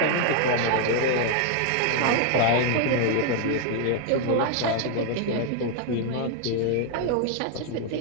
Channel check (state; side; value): different; both; correlation 0.00